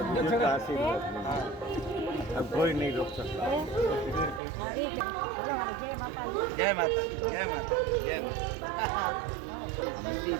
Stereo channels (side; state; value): left; drops out; at 4.4 s